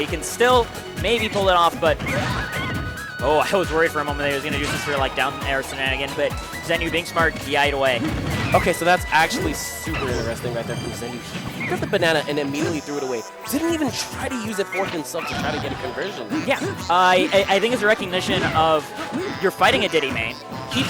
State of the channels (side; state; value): both; identical; correlation 1.00